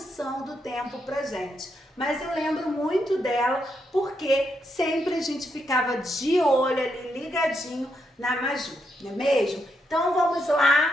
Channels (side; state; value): both; normal; correlation 0.80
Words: do tempo pra gente, mas eu lembro muito dela porque sempre a gente ficava de olho ali, ligadinho na Maju, não é mesmo? Então vamos